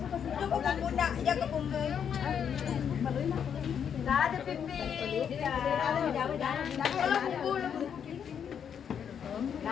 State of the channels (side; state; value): right; quieter; 7.9 dB